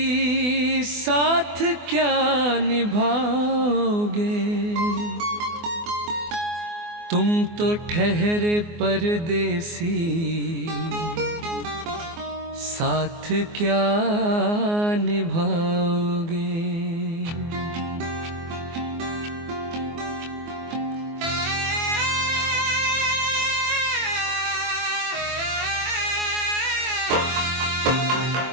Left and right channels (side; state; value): left; late; 24 ms